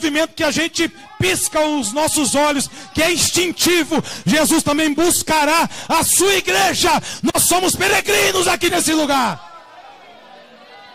que a gente pisca os nossos olhos, que é instintivo, Jesus também buscará a sua igreja. Nós somos peregrinos aqui nesse lugar.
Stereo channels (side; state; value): both; identical; correlation 1.00